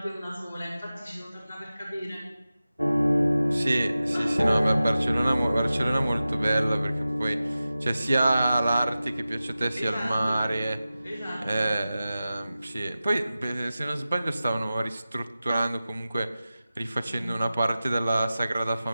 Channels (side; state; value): both; inverted; correlation -0.95